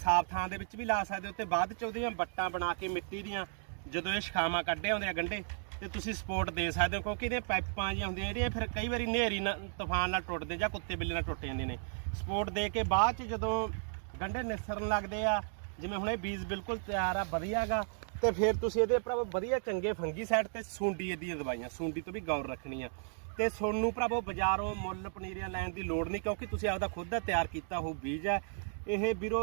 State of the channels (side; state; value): left; silent; digital silence